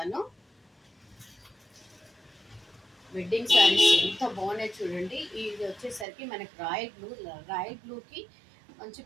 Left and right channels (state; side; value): drops out; left; at 6.1 s